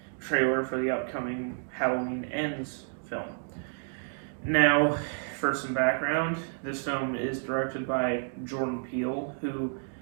trailer for the upcoming Halloween Ends film. Now, for some background, this film is directed by Jordan Peele, who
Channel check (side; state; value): left; silent; digital silence